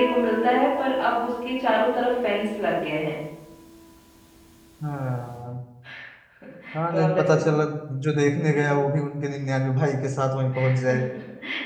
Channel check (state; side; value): identical; both; correlation 1.00